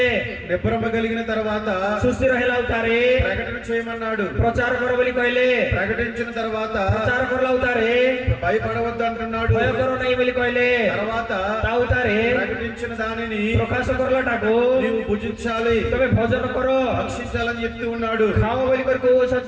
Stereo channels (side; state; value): both; identical; correlation 1.00